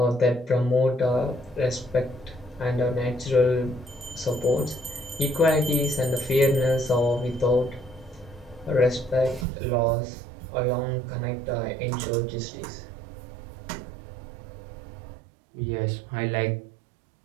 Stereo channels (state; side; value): drops out; left; at 9.5 s